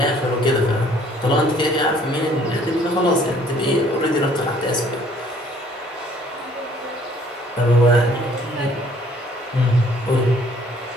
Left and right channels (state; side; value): normal; both; correlation 0.59